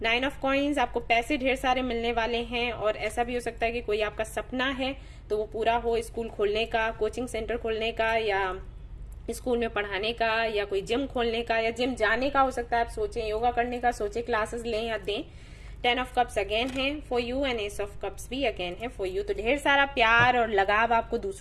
9 ऑफ कॉइंस, आपको पैसे ढेर सारे मिलने वाले हैं, और ऐसा भी हो सकता है कि कोई आपका सपना है तो वो पूरा हो, स्कूल खोलने का, कोचिंग सेंटर खोलने का, या स्कूल में पढ़ाने का, या कोई जिम खोलने का, या जिम जाने का हो सकता है आप सोचें, योगा करने का सोचें, क्लासेस लें या दें। 10 ऑफ कप्स अगेन है for you, and S of cups भी अगेन है फॉर यू। तो ढेर सारा प्यार और लगाव आपको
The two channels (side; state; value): both; identical; correlation 1.00